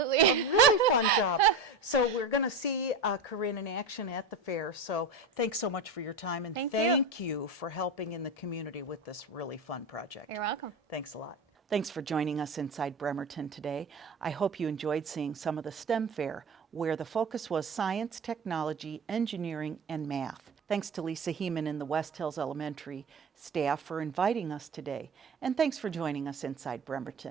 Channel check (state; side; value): quieter; left; 3.2 dB